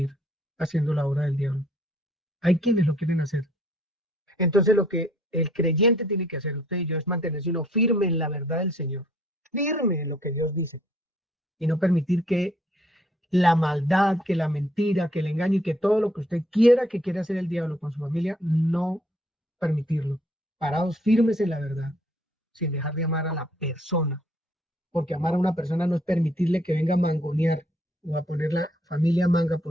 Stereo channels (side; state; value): both; normal; correlation 0.63